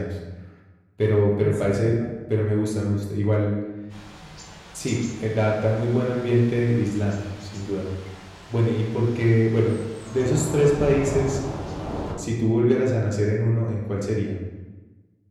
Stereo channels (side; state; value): both; identical; correlation 1.00